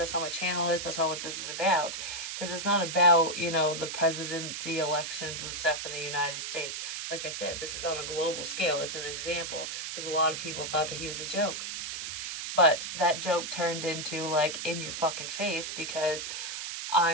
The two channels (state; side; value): noise; right; hiss, 5 dB below the sound